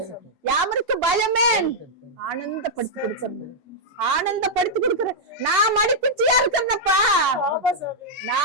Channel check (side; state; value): both; normal; correlation -0.05